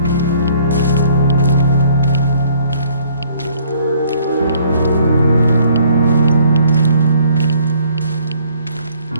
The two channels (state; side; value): inverted; both; correlation -0.61